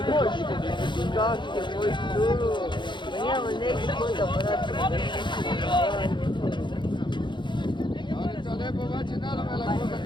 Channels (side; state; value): right; late; 0.23 ms